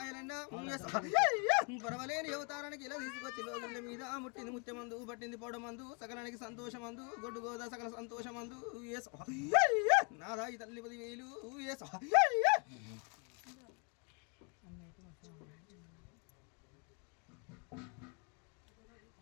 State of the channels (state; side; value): quieter; right; 34.8 dB